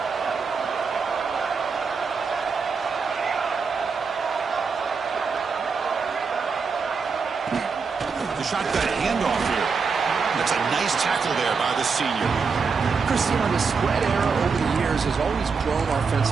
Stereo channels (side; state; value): left; quieter; 5.2 dB